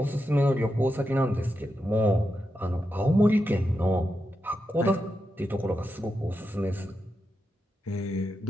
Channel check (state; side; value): normal; both; correlation 0.87